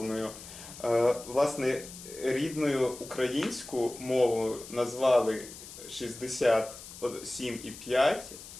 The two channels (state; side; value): noise; left; hiss, 15 dB below the sound